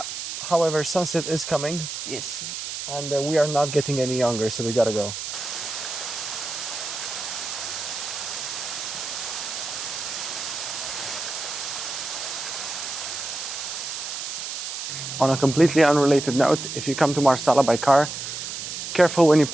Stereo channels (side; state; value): right; noise; hiss, 6 dB below the sound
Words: However, sunset is coming. Yes. And we are not getting any younger, so we gotta go. On a completely unrelated note, if you come to Marsala by car, careful when you